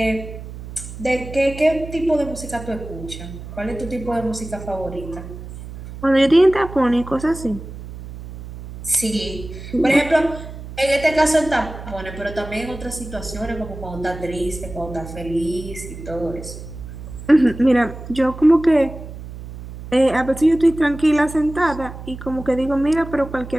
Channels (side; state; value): right; noise; hum, 12 dB below the sound